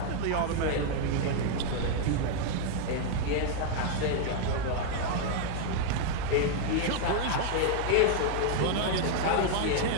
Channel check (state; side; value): different; both; correlation 0.00